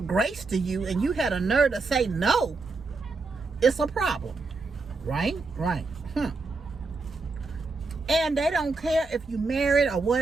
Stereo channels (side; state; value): left; quieter; 3.8 dB